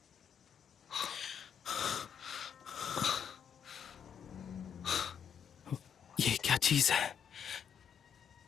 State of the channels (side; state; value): right; quieter; 7.9 dB